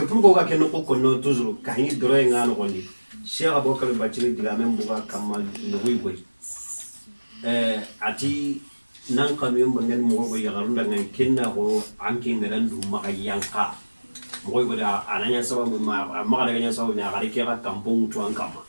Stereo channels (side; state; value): both; inverted; correlation -1.00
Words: كفر بوكا كنو كنا تزرو كهني دروين عانو قولي شيخ أبو كريم باتشلي دلامين بوكا كمال نوي قولي ati nan kamiyon bangen mo go yagarunda ngan kenna go anki ngalan du maka yanka mo go da ananya sababu ma daga nya sababu na gari ke ka kampung to an kama